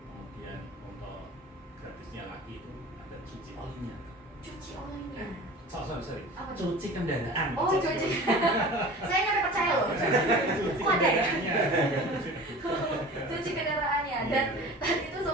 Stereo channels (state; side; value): normal; both; correlation 0.39